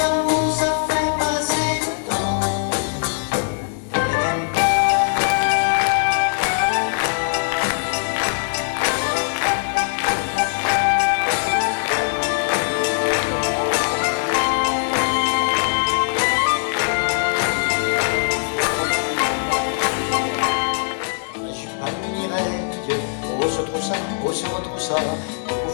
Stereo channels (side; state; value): right; silent; 63 dB below the other